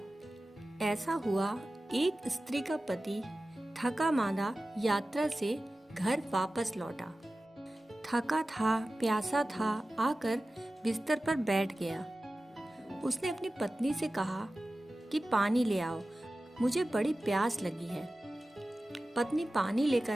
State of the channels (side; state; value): both; normal; correlation 0.96